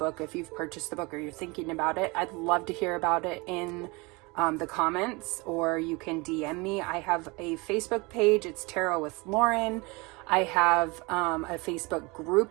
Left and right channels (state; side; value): quieter; left; 26.2 dB